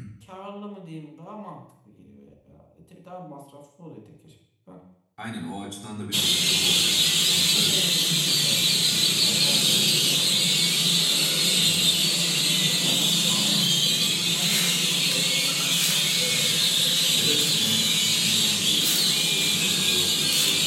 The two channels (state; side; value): identical; both; correlation 1.00